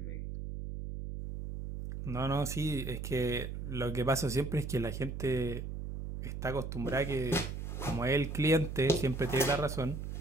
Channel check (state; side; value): noise; right; hum, 6 dB below the sound